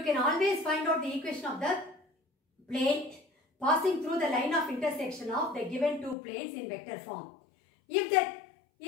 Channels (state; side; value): drops out; right; at 6.2 s